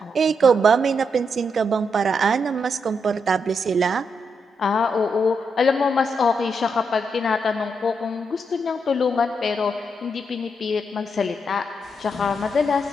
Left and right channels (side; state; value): both; normal; correlation 0.81